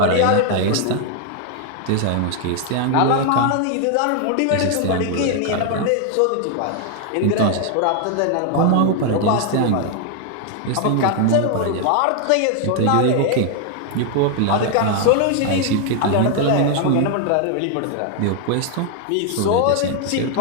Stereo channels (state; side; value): different; both; correlation 0.00